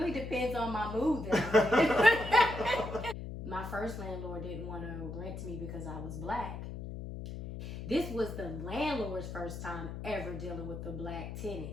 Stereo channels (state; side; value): noise; left; hum, 8 dB below the sound